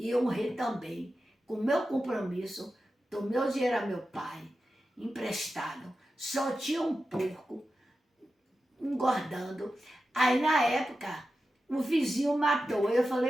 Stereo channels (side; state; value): both; normal; correlation 0.92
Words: eu honrei também, com o meu compromisso, tomei o dinheiro a meu pai, emprestado. Só tinha um porco engordando. Aí na época, o vizinho matou. Eu